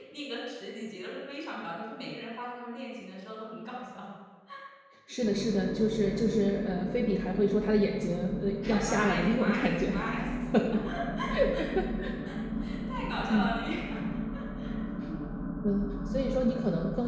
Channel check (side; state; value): both; identical; correlation 1.00